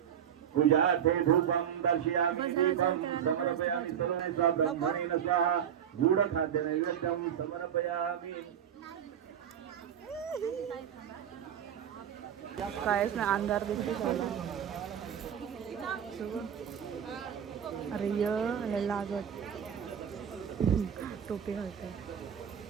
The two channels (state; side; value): quieter; left; 9.0 dB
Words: पूजार्थे धूपं दर्शयामि दीपं समर्पयामि सर्वे सा ब्रह्मणेन स्वाहा गूढखाद्य नैवेद्यं समर्पयामि कायच ना अंधार दिसते सगळा अरे य लागत टोपी घालते